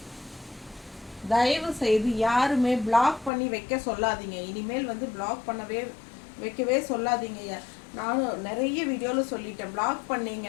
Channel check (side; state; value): right; drops out; at 3.3 s